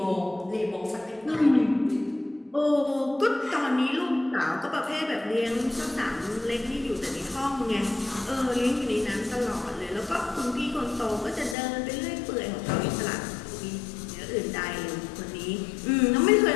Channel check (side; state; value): right; drops out; at 11.6 s